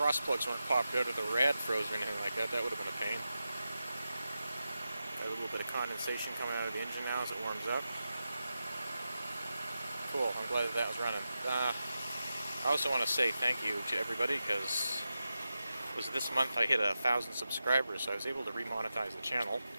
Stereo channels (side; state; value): both; inverted; correlation -0.91